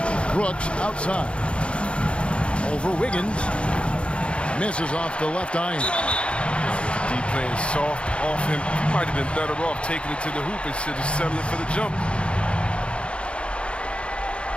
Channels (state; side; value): late; right; 0.058 ms